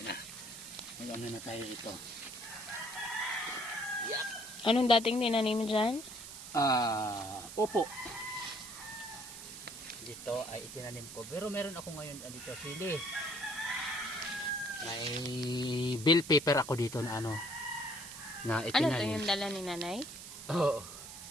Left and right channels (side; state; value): right; noise; hiss, 12 dB below the sound